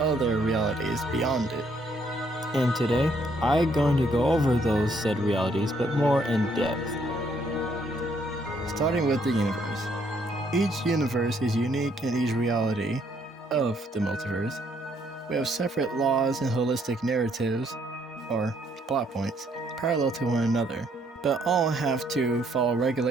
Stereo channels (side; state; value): both; normal; correlation 0.69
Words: other realities beyond it. And today, I'm going to go over those said realities, but more in depth. Starting with the universe. Each universe is unique in each reality of the multiverse. We have separate laws and holistic narratives, or plot points, parallel to one another, but all have to follow